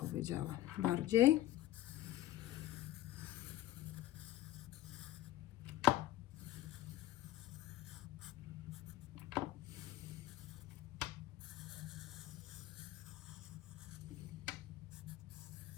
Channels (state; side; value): quieter; right; 14.7 dB